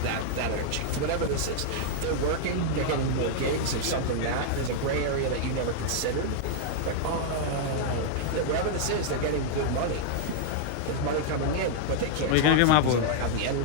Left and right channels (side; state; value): both; different; correlation -0.01